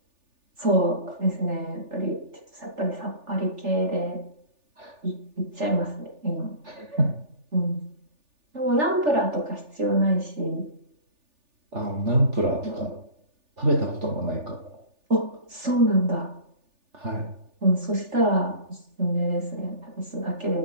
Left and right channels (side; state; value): left; late; 3.4 ms